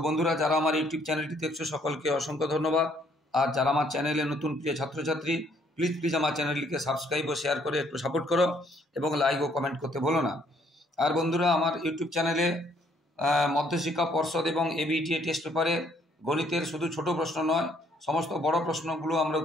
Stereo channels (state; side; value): normal; both; correlation 0.66